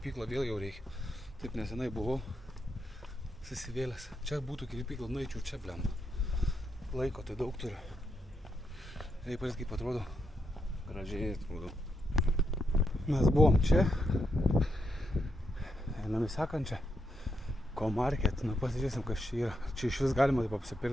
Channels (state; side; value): normal; both; correlation 0.81